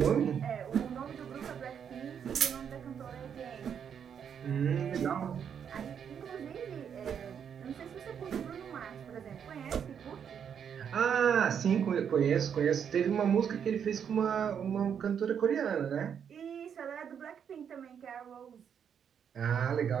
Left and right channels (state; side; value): quieter; left; 7.9 dB